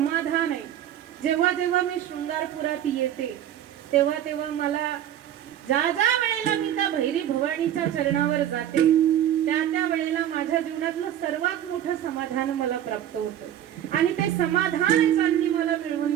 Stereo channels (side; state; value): left; quieter; 11.0 dB